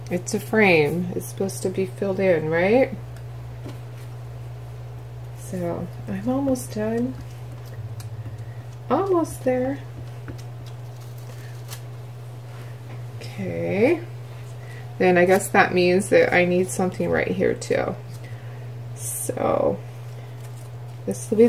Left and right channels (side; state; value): both; identical; correlation 1.00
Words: It's a frame. It's supposed to be filled in, right? So, I'm almost done. Almost there. Okay. Then I guess that means that I need something right here too. So, this will be